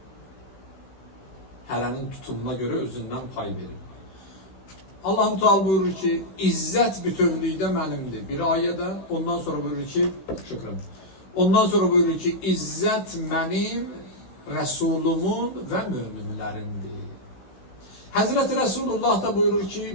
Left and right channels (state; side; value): late; right; 16 ms